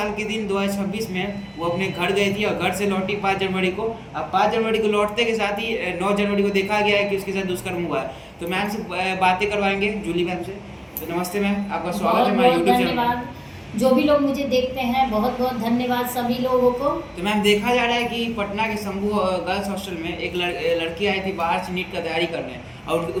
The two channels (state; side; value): identical; both; correlation 1.00